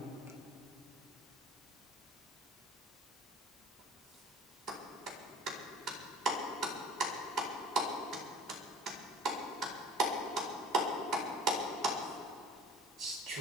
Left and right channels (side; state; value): both; normal; correlation 0.45